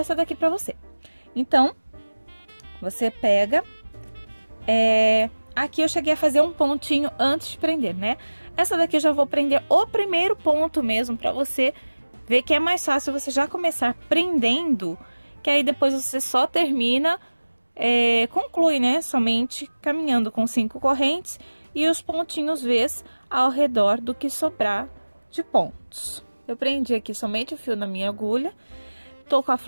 daqui pra você. Então, você pega, aqui eu cheguei a fazer um pontinho antes de prender, né? Essa daqui eu já vou prender o primeiro ponto mesmo, pra você ver que é mais fácil você já começar prendendo, que aí depois você só termina, conclui, né? Somente caminhando com 5 correntes e os pontinhos Vs ao redor do que sobrar de pontos. Eu prendi aqui somente o fio na minha agulha, tô com a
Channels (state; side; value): inverted; both; correlation -1.00